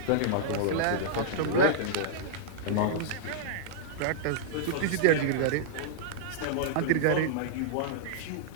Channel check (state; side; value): different; both; correlation -0.02